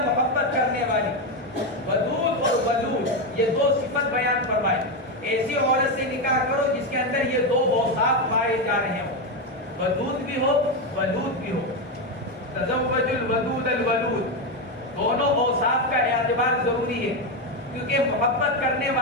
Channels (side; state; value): both; normal; correlation 0.10